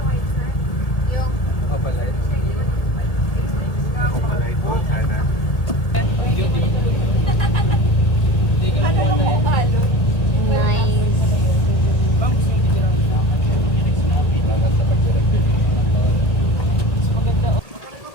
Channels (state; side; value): late; right; 1.7 ms